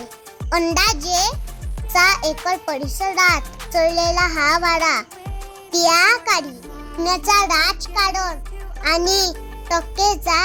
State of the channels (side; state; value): both; identical; correlation 1.00